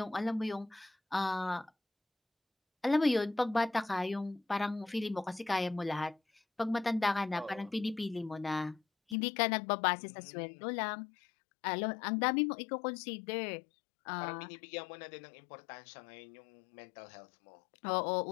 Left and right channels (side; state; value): right; drops out; at 9.2 s